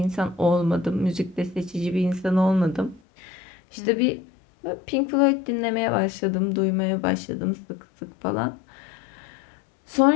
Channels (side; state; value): right; drops out; at 3.0 s